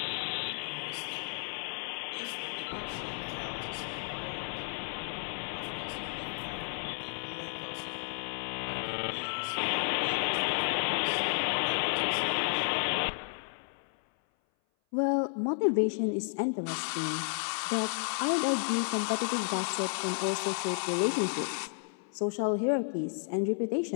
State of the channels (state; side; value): silent; right; 56 dB below the other